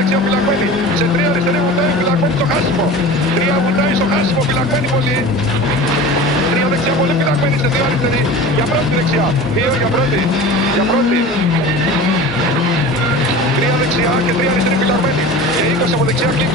φυλακμένη. Σε 3 αριστερή βουτάει φυλακμένη στο χάσιμο. 3 βουτάει στο χάσιμο φυλακμένη πολύ. 3 δεξιά πολύ φυλακμένη σε 2 αριστερή. Για πρώτη δεξιά. 2 για πρώτη. 3 δεξιά και 3 αριστερή φυλακμένη. Και 20 από δεξιά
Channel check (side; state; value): both; normal; correlation 0.35